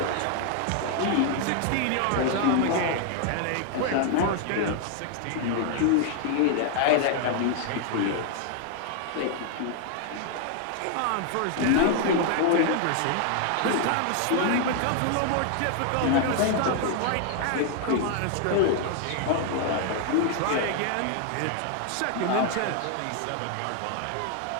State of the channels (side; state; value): both; different; correlation 0.00